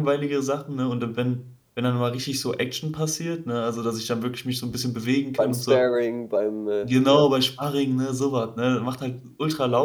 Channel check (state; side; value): identical; both; correlation 1.00